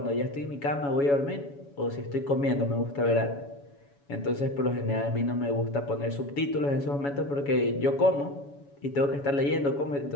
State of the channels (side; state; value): right; late; 7.1 ms